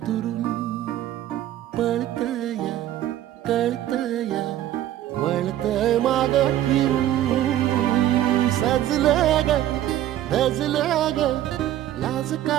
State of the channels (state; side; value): quieter; left; 12.7 dB